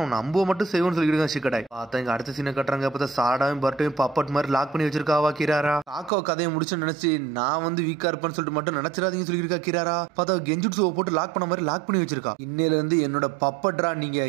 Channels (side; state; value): left; drops out; at 6.1 s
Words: நம்ப மட்டும் செய்வோம்னு சொல்லிட்டு சிக்கடாய். பார்த்தா இங்க அடுத்த சீனை கட்டுறாங்க. பார்த்தா சாடாவும் பட்டும் பப்பட் மாதிரி லாக் பண்ணி வச்சிருக்காவா கிராரா. காக்கோ கதையை முடிச்சு நினைச்சு நான் வந்து வீக்கா இருப்பேன்னு சொல்லிட்டு மட்டும் நினைச்சிடாதீங்கன்னு சொல்லியிருக்கா கிராரா. பார்த்தா கெஞ்சுட்ஸுவை போட்டு லாக் பண்ண மாதிரி லாக் பண்ணி வச்சிருக்கா. இன்னையில இருந்து என்னோட பப்பட்ரா, நீங்க